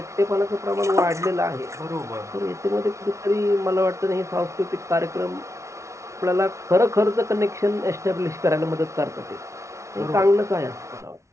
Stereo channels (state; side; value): late; left; 0.14 ms